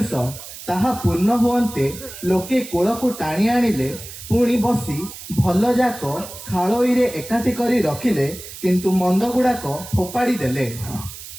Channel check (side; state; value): right; noise; hiss, 13 dB below the sound